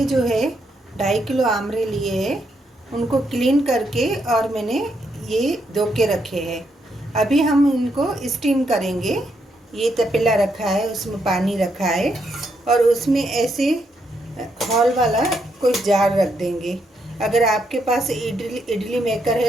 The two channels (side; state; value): both; normal; correlation 0.78